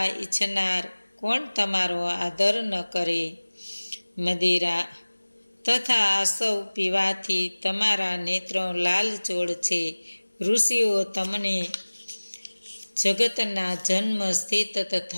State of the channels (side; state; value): both; inverted; correlation -1.00